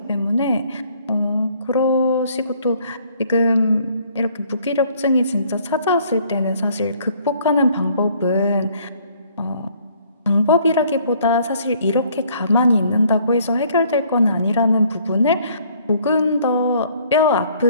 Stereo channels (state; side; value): inverted; both; correlation -0.61